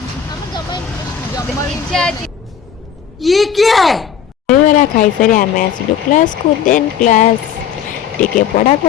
ଇଚ୍ଛା ଅଛି। दहीबरा खाई सारी आम आसलु क्लास को देन क्लास टिके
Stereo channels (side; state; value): right; quieter; 8.0 dB